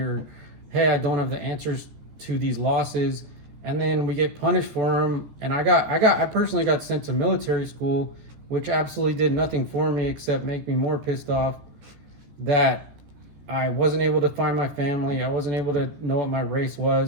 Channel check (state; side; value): late; left; 14 ms